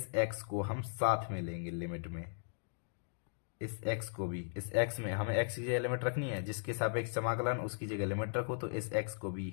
x को हम साथ में लेंगे लिमिट में, इस x को भी, इस x में हमें x की जगह लिमिट रखनी है, जिसके सापेक्ष समाकलन उसकी जगह लिमिट रखो, तो इस x को भी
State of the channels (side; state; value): right; silent; digital silence